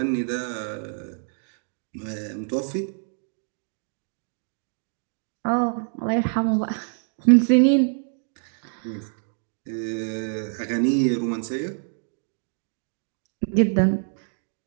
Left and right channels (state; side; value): silent; left; digital silence